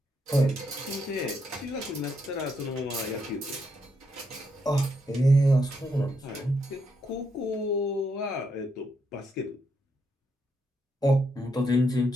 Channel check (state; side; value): normal; both; correlation 0.78